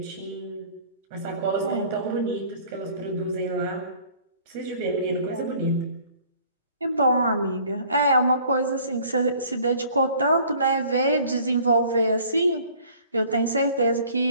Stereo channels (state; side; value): inverted; both; correlation -0.53